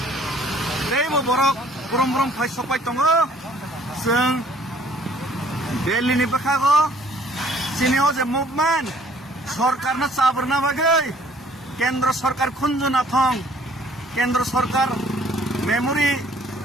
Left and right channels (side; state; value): both; normal; correlation 0.59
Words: दैबो borok brom brom phai sopai tongo जों Delhi ni bakago chini ho je movement सरकार ना चाबरना बागै केंद्र सरकार खुंजुना थं केंद्र सरकार मेमोरी